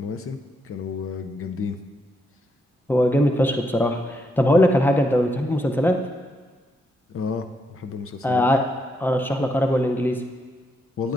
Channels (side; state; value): both; normal; correlation 0.79